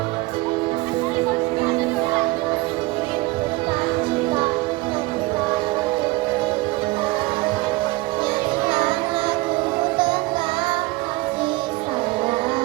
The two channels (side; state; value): left; quieter; 22.0 dB